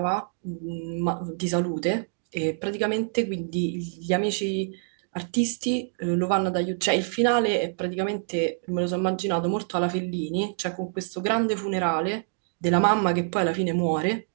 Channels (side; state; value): left; silent; digital silence